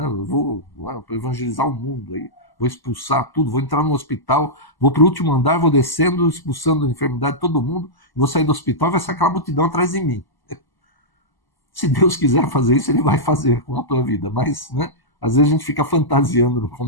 Eu vou evangelizar o mundo, aí, vou expulsar tudo, vou entrar no hospital, vou para o último andar, vou descendo, expulsando a enfermidade de todo mundo, vou sair do hospital e vai sair aquela multidão atrás de mim. Se Deus quiser fazer isso, Ele vai fazer com a tua vida, mas, né? Às vezes a gente fica fantasiando no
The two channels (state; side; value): late; right; 1.0 ms